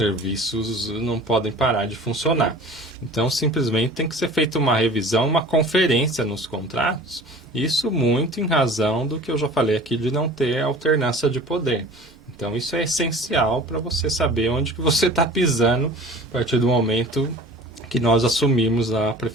não podem parar de funcionar. Então, simplesmente tem que ser feita uma revisão, uma conferência nos contratos, isso muito em razão do que eu já falei aqui de não ter alternância de poder. Então, isso é essencial para você saber onde que você está pisando a partir do momento que nós assumimos a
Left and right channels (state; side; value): normal; both; correlation 0.42